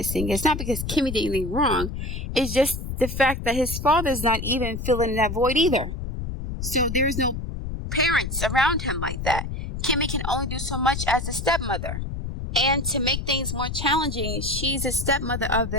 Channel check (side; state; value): left; noise; rumble, 5 dB below the sound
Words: It's not because Kimmie did anything wrong. It's just the fact that his father's not even filling that void either. So there's no parents around him like that. Kimmie can only do so much as a stepmother. And to make things more challenging, she's a stepmother of